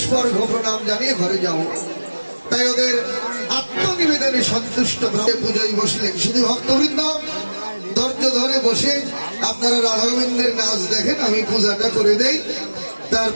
প্রণাম জানিয়ে ঘরে যাও। তাই ওদের আত্মনিবেদনে সন্তুষ্ট পুজোয় বসলেন। শুধু ভক্তবৃন্দ ধৈর্য ধরে বসে আপনারা রাধা গোবিন্দের নাচ দেখেন, আমি পূজাটা করে দেই,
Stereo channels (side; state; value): both; inverted; correlation -1.00